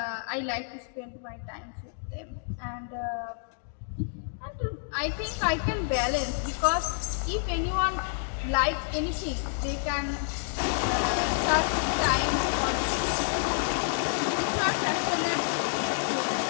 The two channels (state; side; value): silent; right; digital silence